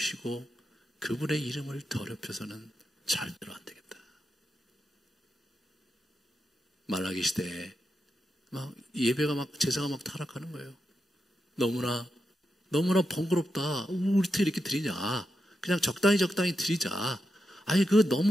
그분의 이름을 더럽혀서는 절대로 안 되겠다. 말라기 시대에 막 예배가 막 제사가 막 타락하는 거예요. 너무나 번거롭다. 우리 어떻게 이렇게 드리냐? 그냥 적당히 드리자. 아니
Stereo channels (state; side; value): normal; both; correlation 0.87